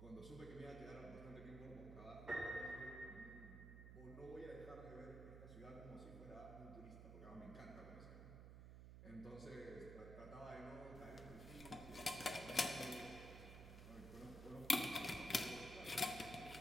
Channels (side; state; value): right; noise; hum, 10 dB below the sound